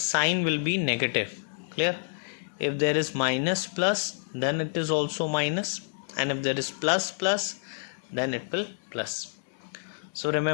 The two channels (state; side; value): silent; right; digital silence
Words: will be negative. Clear? If there is minus plus, then it is also minus, and if there is plus plus, then it will plus. So